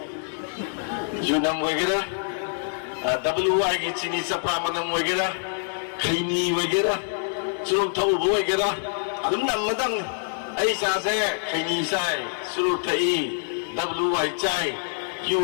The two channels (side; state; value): right; silent; 61 dB below the other